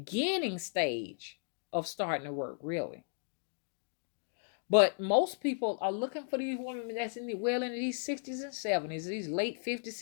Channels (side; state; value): right; silent; digital silence